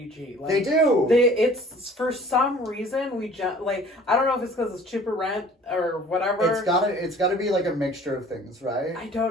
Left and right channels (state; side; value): normal; both; correlation 0.50